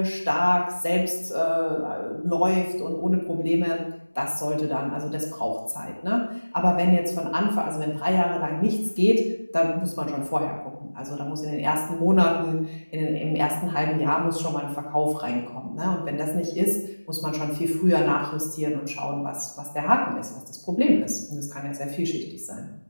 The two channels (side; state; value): both; inverted; correlation -1.00